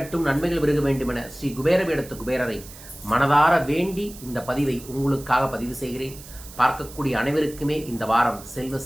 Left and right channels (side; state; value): right; noise; hiss, 17 dB below the sound